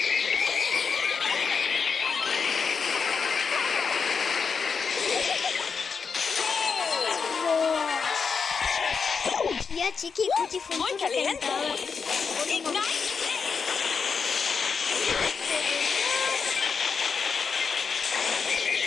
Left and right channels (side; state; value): right; quieter; 5.7 dB